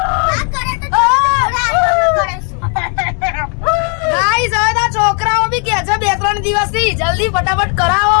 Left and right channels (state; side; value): quieter; right; 38.8 dB